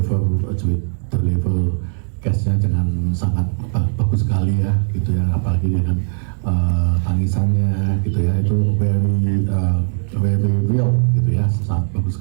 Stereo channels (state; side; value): silent; left; digital silence